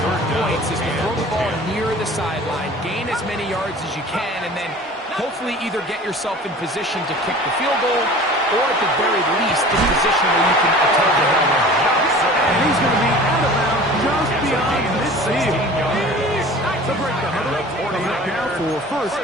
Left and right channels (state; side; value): normal; both; correlation 0.42